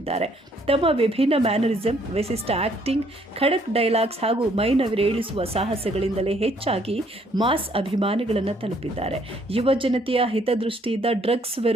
ತಮ್ಮ ವಿಭಿನ್ನ ಮ್ಯಾನರಿಸಂ, ವಿಶಿಷ್ಟ ಆಕ್ಟಿಂಗ್, ಖಡಕ್ ಡೈಲಾಗ್ಸ್ ಹಾಗೂ ಮೈನವಿರೇಳಿಸುವ ಸಾಹಸಗಳಿಂದಲೇ ಹೆಚ್ಚಾಗಿ ಮಾಸ್ ಅಭಿಮಾನಿಗಳನ್ನು ತಲುಪಿದ್ದಾರೆ. ಯುವ ಜನತೆಯ ಹಿತದೃಷ್ಟಿಯಿಂದ ಡ್ರಗ್ಸ್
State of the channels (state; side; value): normal; both; correlation 0.65